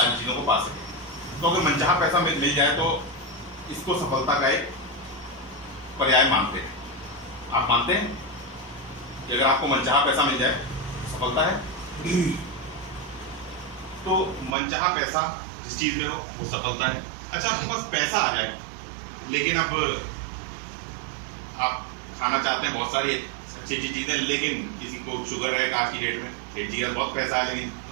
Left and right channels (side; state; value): left; drops out; at 14.6 s